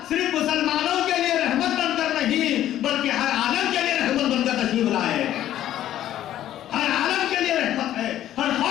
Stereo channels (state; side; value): quieter; right; 12.3 dB